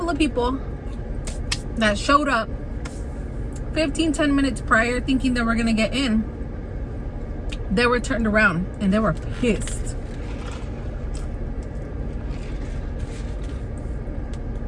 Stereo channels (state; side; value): identical; both; correlation 1.00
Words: of people that showed up 10 minutes prior thinking they were gonna get in. They were turned around and they were pissed.